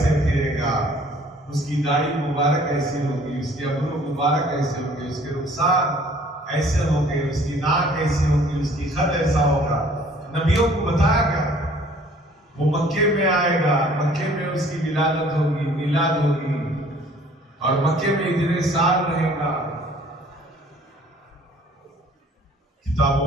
फिरेगा, उसकी दाढ़ी मुबारक ऐसी होगी, उसके अबरू मुबारक ऐसे होंगे, उसके रुखसार ऐसे होंगे, उसकी नाक ऐसी होगी, उसकी खद ऐसा होगा। नबियों को बताया गया। वो मक्के में आएगा, मक्के में उसकी विलादत होगी, मिलाद होगी, और मक्के में इतने साल रहेगा।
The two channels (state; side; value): normal; both; correlation 0.55